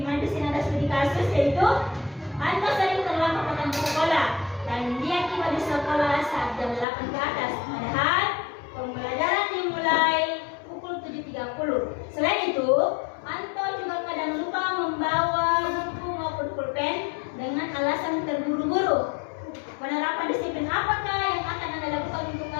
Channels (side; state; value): right; drops out; at 6.9 s